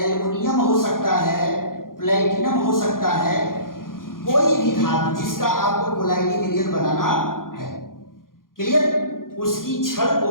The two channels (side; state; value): right; late; 0.91 ms